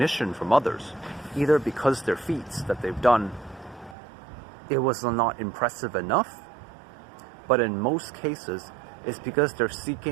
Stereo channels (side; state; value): left; drops out; at 4.0 s